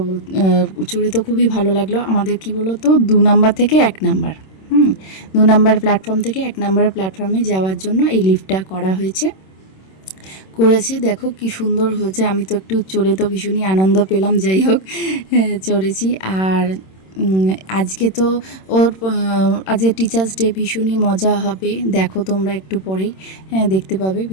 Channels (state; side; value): late; right; 26 ms